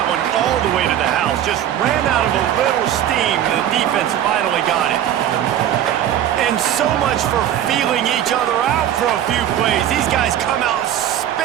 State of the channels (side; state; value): left; quieter; 10.9 dB